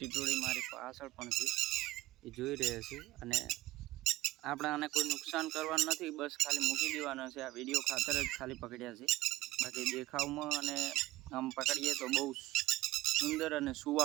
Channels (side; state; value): left; quieter; 17.7 dB